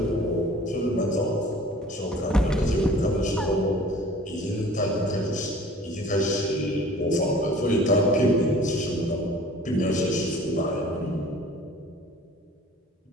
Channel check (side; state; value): both; normal; correlation 0.47